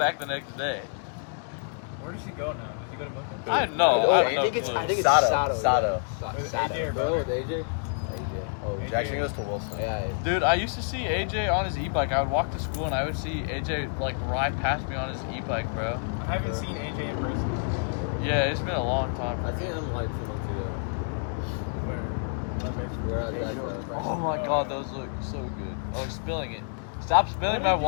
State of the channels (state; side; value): silent; right; digital silence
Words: the next day. Where does he go now? Does he go to Milton? I know. I I think it's know. Sato. With AJ or Bro, brother? with AJ? Oh, AJ. Jackson goes to Wilson. Yeah. Dude, I used to see AJ on his e-bike. I would walk to school and I would see AJ like ride past me on his e-bike, bro. I haven't seen AJ in person in a while. Bro. Yeah, it's been a long time. I think I'm like 2 months ago. Where? Left face. We're at that. Oh my Oh, God, yeah. those look so good. Oh, he's spilling it. Stop What spilling did my you